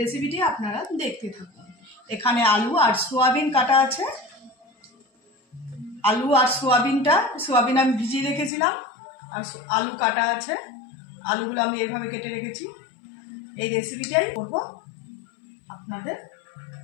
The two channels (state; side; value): drops out; right; at 8.5 s